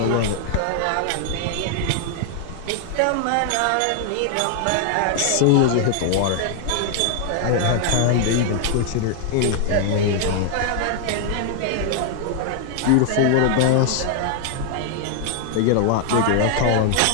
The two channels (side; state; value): both; different; correlation 0.00